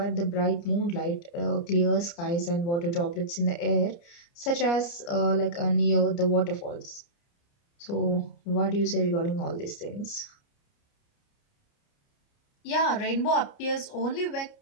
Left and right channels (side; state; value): right; late; 29 ms